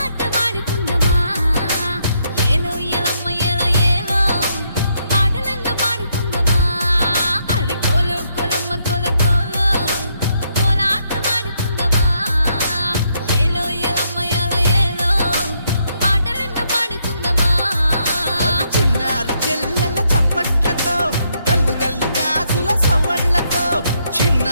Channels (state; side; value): inverted; both; correlation -0.75